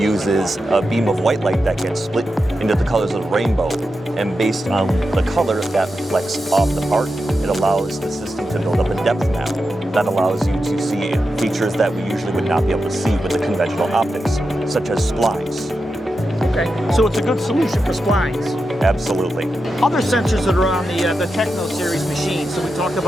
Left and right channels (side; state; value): both; normal; correlation 0.89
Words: a beam of white light that gets split into the colors of the rainbow, and based on the color that reflects off the part, it allows the system to build up a depth map that allows you to see features that we usually would not be able to see with the conventional optics, such as splines. Okay, so it's a good solution for splines. Absolutely. Other sensors that are on the Techno series machine. So we talked